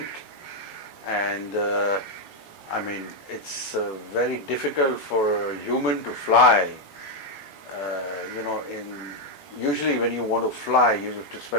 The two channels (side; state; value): right; late; 18 ms